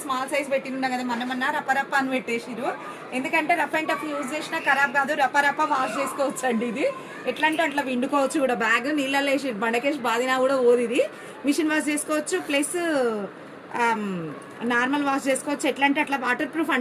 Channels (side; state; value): both; identical; correlation 1.00